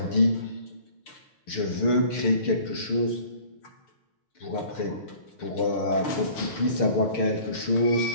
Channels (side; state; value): right; late; 6.7 ms